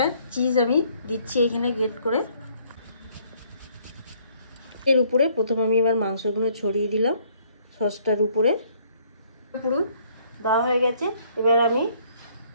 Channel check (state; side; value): inverted; both; correlation -0.63